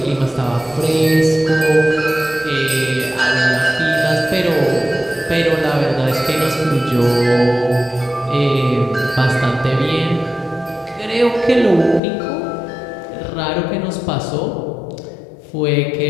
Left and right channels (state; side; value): drops out; right; at 12.0 s